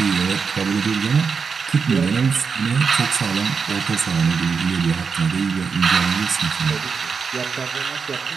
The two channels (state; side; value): quieter; left; 5.6 dB